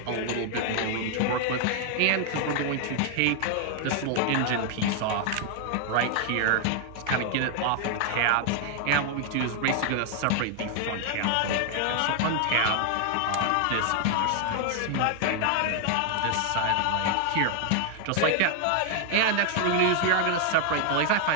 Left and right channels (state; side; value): different; both; correlation 0.00